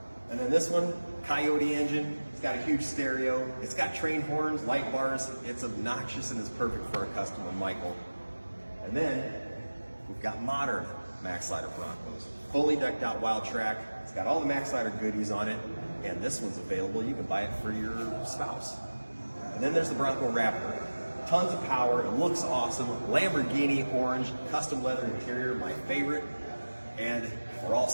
And then this one, Coyote engine. It's got a huge stereo. It's got train horns, light bars. It's obnoxious and it's perfect for our customer, Michael. And then we've got modern Maxlider Broncos. Fully decked out wild track. It's got all the Maxlider goodies on it. And this one's available. You can buy it for your spouse. And then there's the Bronco Braptor. Tons of power. It looks awesome. Lamborghini orange, custom leather interior, my favorite. And we're all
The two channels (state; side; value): inverted; both; correlation -1.00